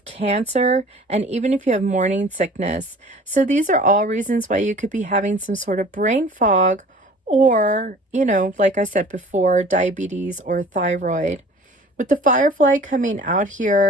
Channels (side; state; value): both; normal; correlation 0.47